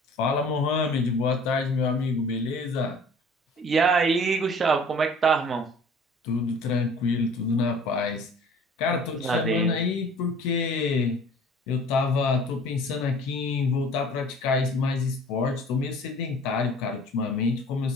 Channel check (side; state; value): both; normal; correlation 0.48